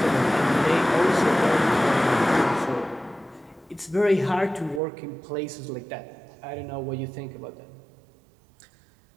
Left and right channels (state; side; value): drops out; left; at 4.8 s